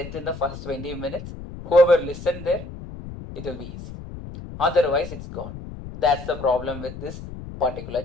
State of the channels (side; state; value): left; noise; rumble, 11 dB below the sound